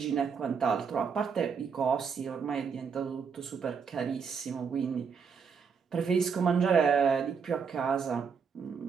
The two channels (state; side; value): quieter; left; 6.2 dB